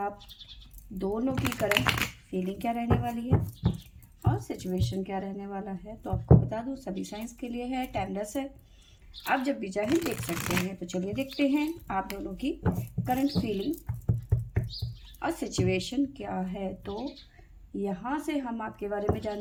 दोनों की करंट फीलिंग क्या रहने वाली है और सिचुएशन क्या रहने वाला है। तो आपको बता दूँ, सभी साइंस के लिए है, टाइमलेस है, आप जब भी चाहें देख सकते हैं। तो चलिए देखते हैं आप दोनों की करंट फीलिंग और सिचुएशन क्या है। तो यहाँ से हम आपके बारे में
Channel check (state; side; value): identical; both; correlation 1.00